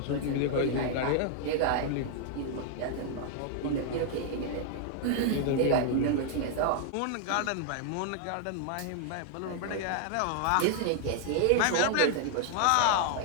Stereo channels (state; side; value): different; both; correlation -0.01